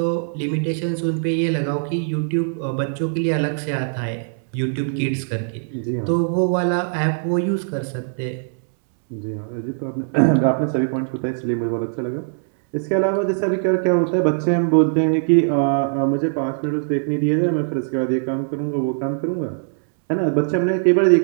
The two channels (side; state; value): left; silent; 65 dB below the other